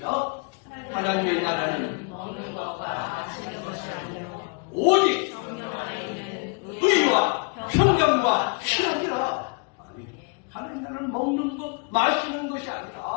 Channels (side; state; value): right; quieter; 35.0 dB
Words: 하나님의 나라는 먹는 것과 마시는 것이 아니요 오직 성령 안에는 의와 평강과 희락이라. 하나님의 나라는 먹는 것, 마시는 것이